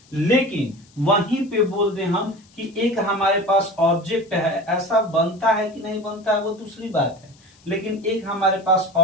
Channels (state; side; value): noise; left; hiss, 29 dB below the sound